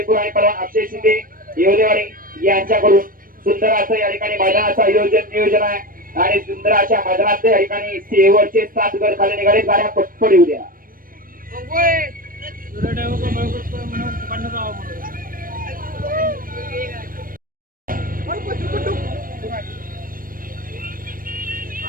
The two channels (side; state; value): left; late; 0.41 ms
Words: आणि पलवान अक्षय शिंदे येवलेवाडी यांच्याकडून सुंदर असं या ठिकाणी मैदानाचं नियोजन आहे आणि सुंदर अशा मैदानात या ठिकाणी शेवटचे 7 गट खाली निघाले गाड्या पटपट येऊ द्या.